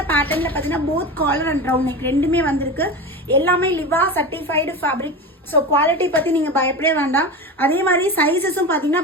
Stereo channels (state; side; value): normal; both; correlation 0.26